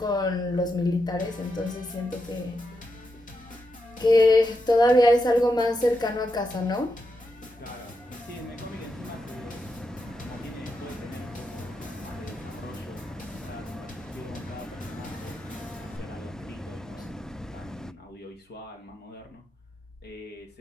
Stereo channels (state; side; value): normal; both; correlation 0.85